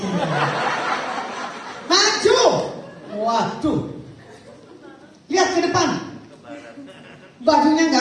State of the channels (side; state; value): both; identical; correlation 1.00